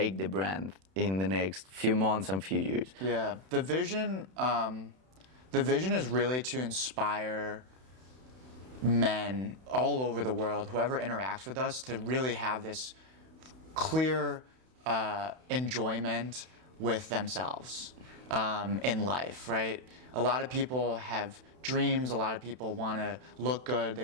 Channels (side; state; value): left; late; 31 ms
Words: the brand in the next few months and few years? Yeah, the vision is really to inspire men all over the world, whoever interacts with us, to really have this clear enjoyment with themselves in life, right? A lot of people have dreams. A lot of people want to look good.